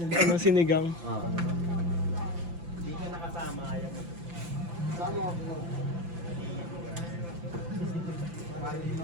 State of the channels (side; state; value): left; late; 5.9 ms